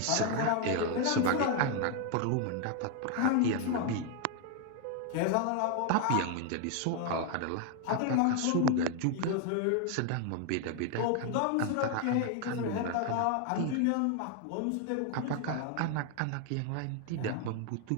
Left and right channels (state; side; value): different; both; correlation 0.01